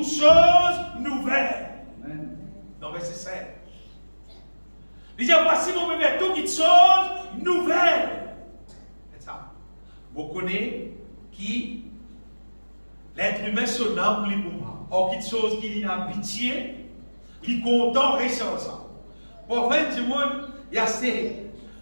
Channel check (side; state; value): both; inverted; correlation -1.00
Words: choses nouvelles. Amen. Dans verset 7. Il dit, voici, mon bébé, toutes choses nouvelles. C'est ça. Vous connaissez qui l'être humain se nomme lui pour moi. Or, quelque chose qui est en pitié, qui est content, reste ça. Pour faire du monde, il y a ce